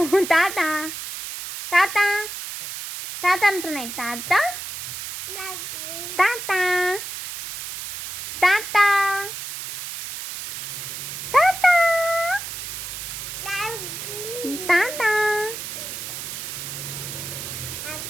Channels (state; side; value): noise; right; hiss, 7 dB below the sound